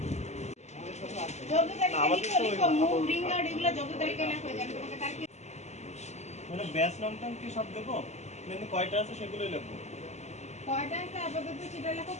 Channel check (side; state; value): right; late; 0.33 ms